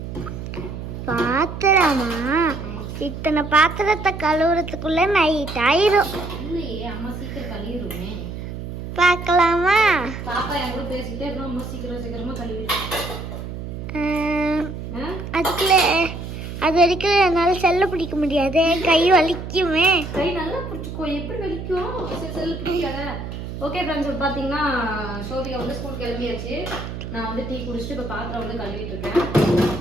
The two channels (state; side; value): noise; right; hum, 8 dB below the sound